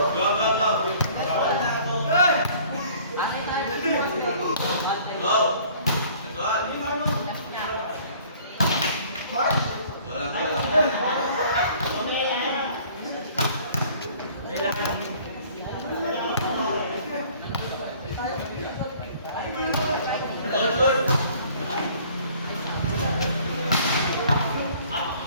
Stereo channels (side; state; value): both; inverted; correlation -0.54